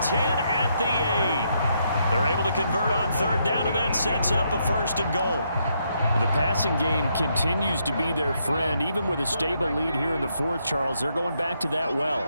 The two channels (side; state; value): both; inverted; correlation -0.77